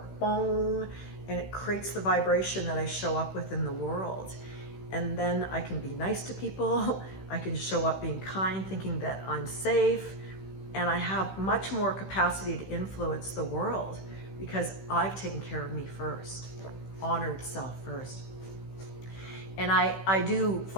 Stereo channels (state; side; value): late; right; 16 ms